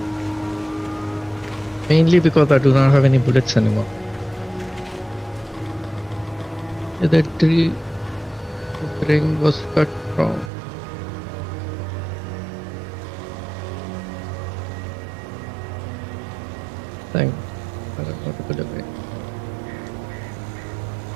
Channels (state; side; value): drops out; left; at 10.5 s